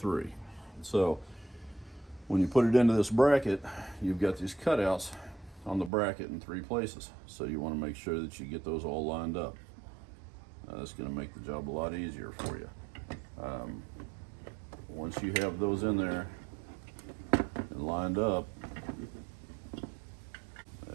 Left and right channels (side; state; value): left; drops out; at 5.9 s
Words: So when you put it into this bracket, you've got these cutouts on the bracket in 3 places. So you want to make sure that you get those all lined up. That's going to make the job a lot easier for you. Once you have those in there and lined up,